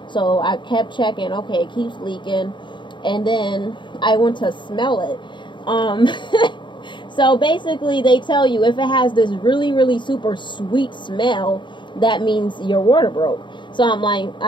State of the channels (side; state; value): right; late; 0.23 ms